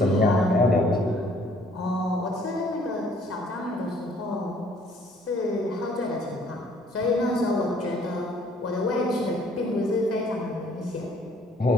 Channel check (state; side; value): normal; both; correlation 0.60